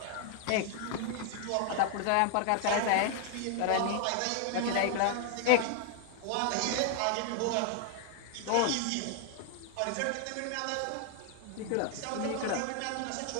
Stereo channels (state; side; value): different; both; correlation 0.00